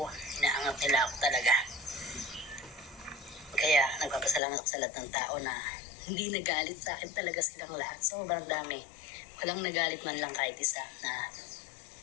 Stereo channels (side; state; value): right; drops out; at 4.4 s